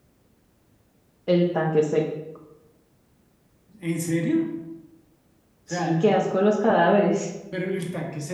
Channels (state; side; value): identical; both; correlation 1.00